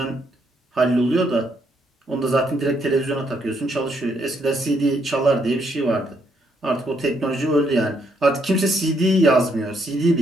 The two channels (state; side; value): normal; both; correlation 0.73